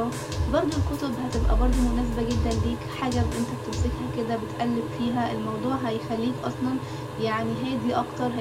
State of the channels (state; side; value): identical; both; correlation 1.00